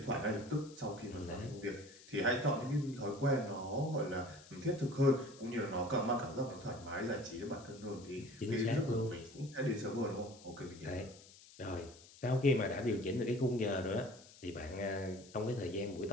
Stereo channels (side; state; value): left; noise; hiss, 21 dB below the sound